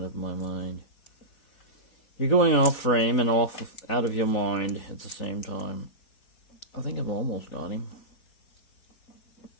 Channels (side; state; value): right; late; 4.0 ms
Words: of my mind. You're going off frame and out of your mind at the same time. I think I've almost got him.